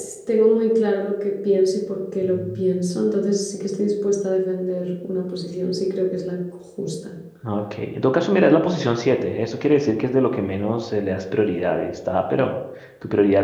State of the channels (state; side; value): identical; both; correlation 1.00